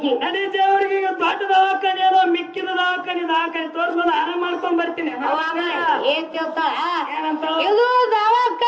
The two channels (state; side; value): identical; both; correlation 1.00